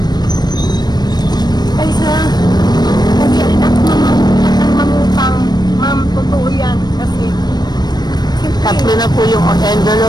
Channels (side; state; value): right; late; 0.20 ms